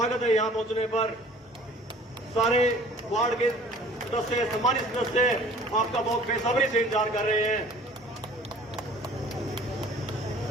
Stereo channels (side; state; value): both; normal; correlation 0.49